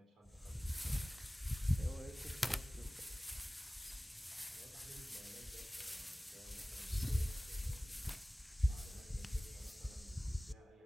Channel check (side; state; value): both; normal; correlation 0.98